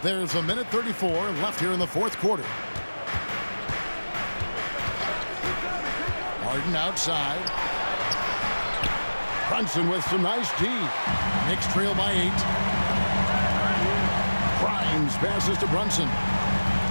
There's a minute 34 left here in the fourth quarter. Harden outside. Brunson with some nice D. Knicks trail by 8. Grimes passes to Brunson.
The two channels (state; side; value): inverted; both; correlation -1.00